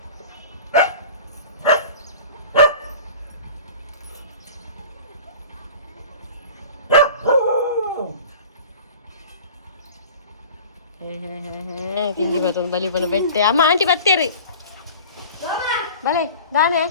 ಕಿಂಗಿ ಬರ್ತೊಂದು ಬಲಿ ಬಂದು ಬೆಟ್ಟೆ ಅಮ್ಮ ಆಂಟಿ ಬರ್ತೀರಿ ಬಲೆ ದಾನೆ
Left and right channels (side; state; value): both; inverted; correlation -0.40